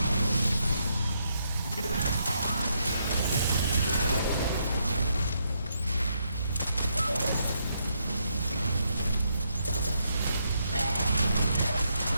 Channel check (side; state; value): both; inverted; correlation -0.77